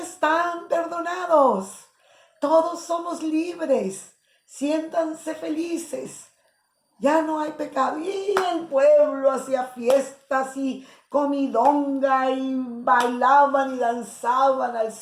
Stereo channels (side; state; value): both; identical; correlation 1.00